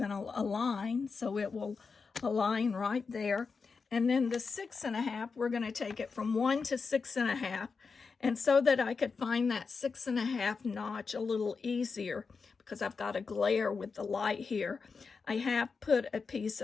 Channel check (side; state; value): right; quieter; 5.0 dB